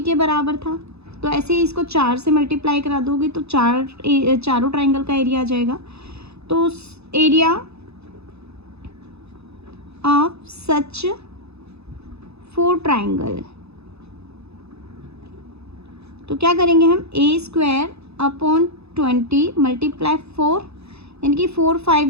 के बराबर था। तो ऐसे ही इसको 4 से मल्टीप्लाई करा दोगे तो चारों ट्राइंगल का एरिया आ जाएगा। तो एरिया ऑफ सच 4 ट्राइंगल, तो क्या करेंगे हम, a²/20 मल्टीप्लाई 4, यानी कि 4 5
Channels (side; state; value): left; late; 0.79 ms